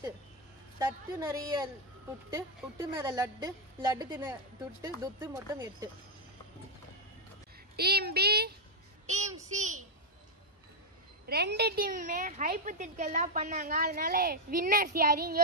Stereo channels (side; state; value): both; normal; correlation -0.01